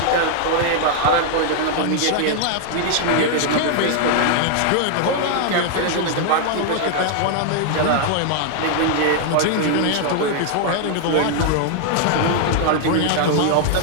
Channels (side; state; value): both; different; correlation 0.00